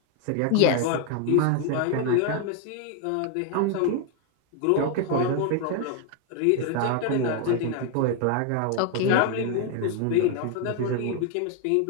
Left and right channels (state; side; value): different; both; correlation 0.01